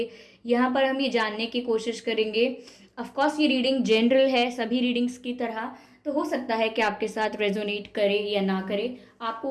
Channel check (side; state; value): both; identical; correlation 1.00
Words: यहाँ पर हम ये जानने की कोशिश करेंगे। ऑफकोर्स ये रीडिंग जनरल है सभी रीडिंग्स की तरह, तो हो सकता है कि आपके साथ रेजोनेट करे या ना करे। आपको